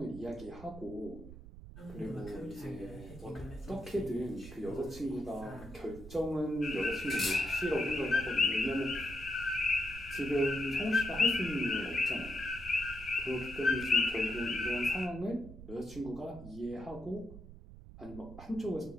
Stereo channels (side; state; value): right; noise; rumble, 15 dB below the sound